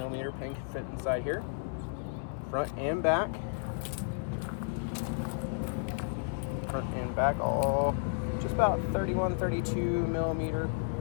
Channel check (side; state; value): right; silent; 56 dB below the other